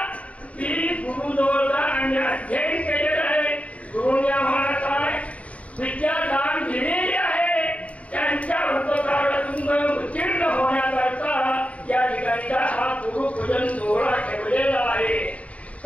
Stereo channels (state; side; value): late; right; 0.066 ms